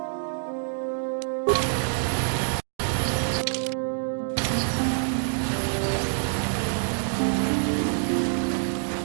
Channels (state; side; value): silent; left; digital silence